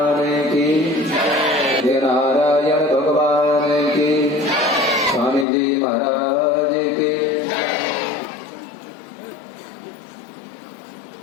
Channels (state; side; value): drops out; right; at 5.5 s